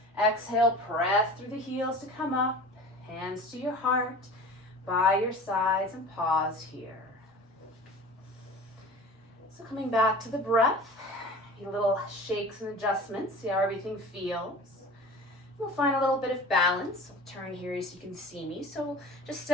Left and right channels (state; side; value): normal; both; correlation 0.38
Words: Exhale, press through the heels to come up, hands to your heart, by your sides, and pause here. So coming back to the breath, a little shakes and adjustments, see how everything feels. We'll find a little bit of balance. I'll turn here so you can see me. So just